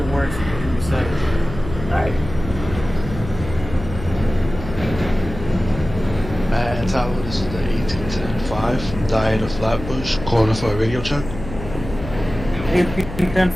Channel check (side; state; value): left; noise; hum, 10 dB below the sound